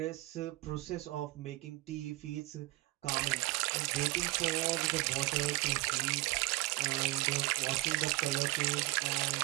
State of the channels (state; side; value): quieter; left; 20.6 dB